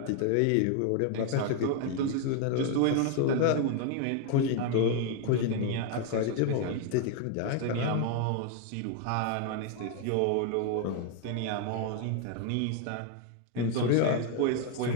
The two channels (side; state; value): both; different; correlation 0.01